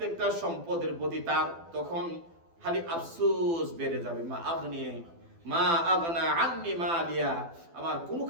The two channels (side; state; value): left; late; 12 ms